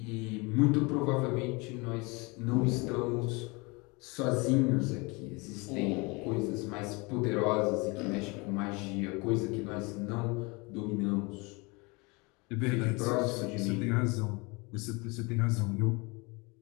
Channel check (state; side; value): quieter; right; 27.3 dB